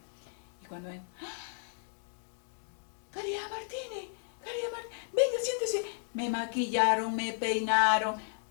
Y cuando ven, Caridad Martínez, venga, siéntese. Me maquillaron, me peinaron,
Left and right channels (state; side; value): silent; right; digital silence